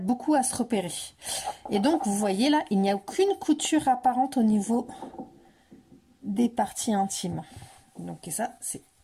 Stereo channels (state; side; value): identical; both; correlation 1.00